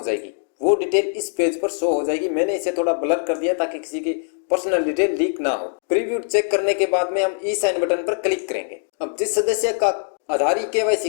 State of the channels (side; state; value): right; silent; digital silence